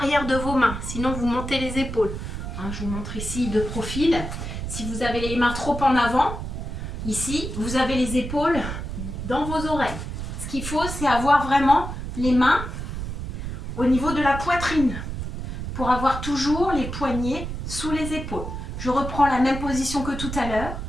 de vos mains. Sinon, vous montez les épaules. Hein, je vous montre ici de profil. Si vous avez les mains trop en avant, ici, vous avez les épaules dans vos oreilles. Ce qu'il faut, c'est avoir vraiment les mains au niveau de la poitrine pour avoir toujours les poignets sous les épaules. Je reprends la même position que tout à l'heure.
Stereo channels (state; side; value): noise; right; rumble, 6 dB below the sound